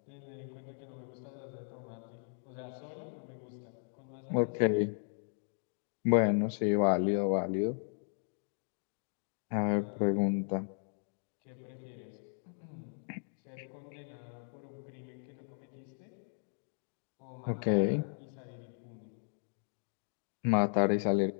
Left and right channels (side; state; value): right; silent; digital silence